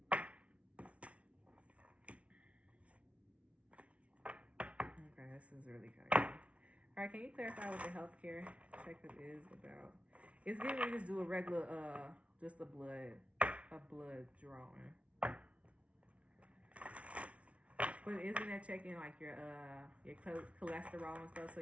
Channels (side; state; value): left; late; 0.063 ms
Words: Okay, this is really kind of cool. All right, can you clarify what the healthcare checkup is about? It's giving me just do a regular, just a blood drawing. But isn't that checking like your cholesterol and stuff? So